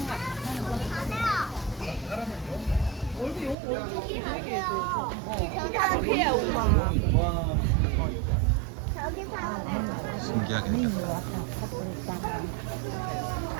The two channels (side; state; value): left; drops out; at 3.6 s